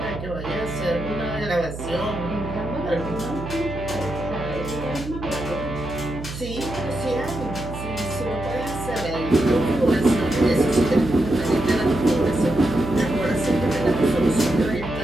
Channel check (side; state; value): right; noise; hum, 9 dB below the sound